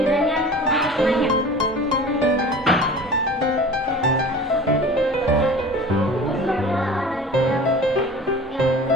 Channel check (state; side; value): normal; both; correlation 0.40